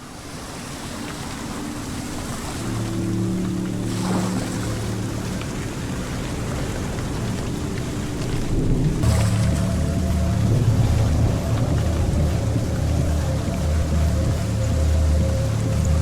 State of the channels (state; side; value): identical; both; correlation 1.00